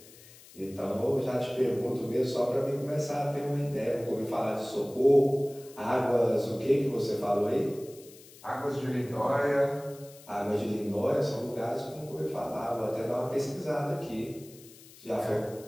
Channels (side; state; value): left; noise; hiss, 21 dB below the sound